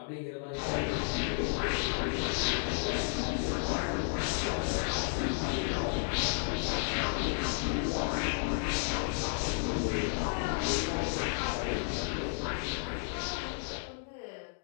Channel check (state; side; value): silent; right; 56 dB below the other